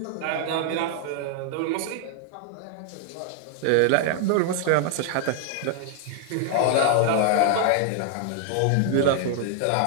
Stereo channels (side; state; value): both; different; correlation 0.00